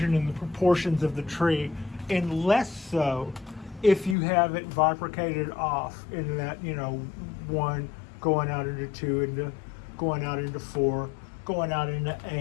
and the proportions of the tree, and less so if you have it bifurcated off in that, 1 going out into 2, into going out into 4, going out into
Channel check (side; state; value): right; drops out; at 4.2 s